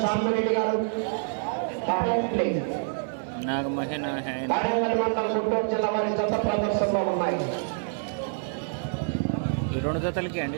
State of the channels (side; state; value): left; silent; 60 dB below the other